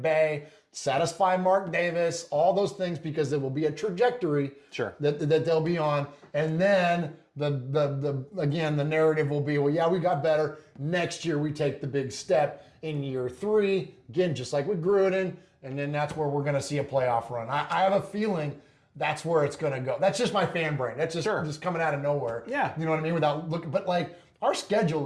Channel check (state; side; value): identical; both; correlation 1.00